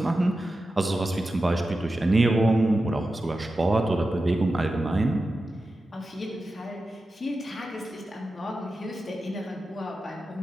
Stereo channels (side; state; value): both; normal; correlation 0.92